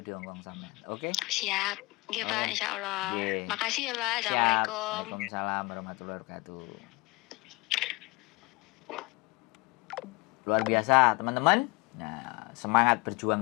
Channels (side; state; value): right; quieter; 24.7 dB